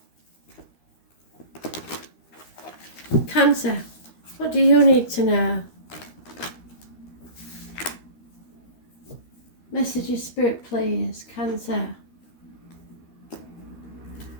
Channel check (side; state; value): right; late; 13 ms